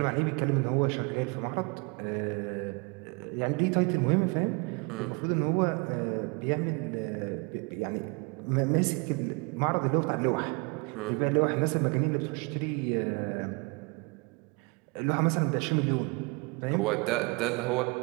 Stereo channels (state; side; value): quieter; left; 29.6 dB